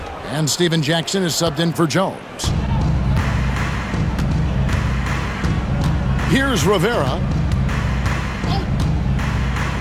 And Steven Jackson is subbed in for Jones. Here's Rivera.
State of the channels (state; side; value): identical; both; correlation 1.00